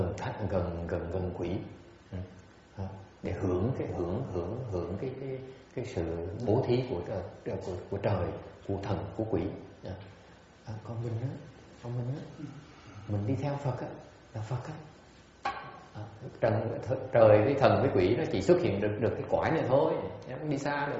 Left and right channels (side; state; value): both; identical; correlation 1.00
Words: gần quỷ. Để hưởng cái sự bố thí của trời, của thần, của quỷ. Còn mình á, mình đi theo Phật á, là Phật á. Trời với thần với quỷ nó chỉ xuất hiện được cái cõi này thôi, nó không đi xa